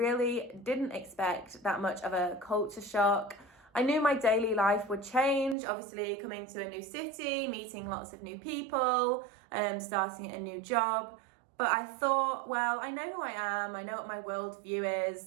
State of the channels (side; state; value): left; drops out; at 5.6 s